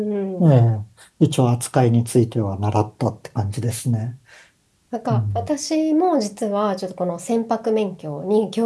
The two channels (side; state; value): both; identical; correlation 1.00